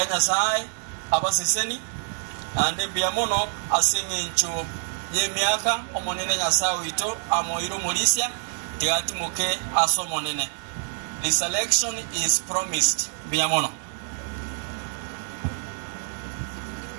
sai abaseseni ande biamono asinge ncho ye miaka omonene nyasawe ito amoiro morisia tiati moke asomonene. This election is promised biamono.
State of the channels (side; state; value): left; silent; 61 dB below the other